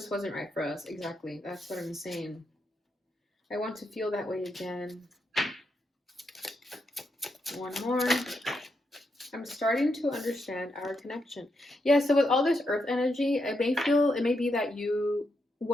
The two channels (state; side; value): normal; both; correlation 0.82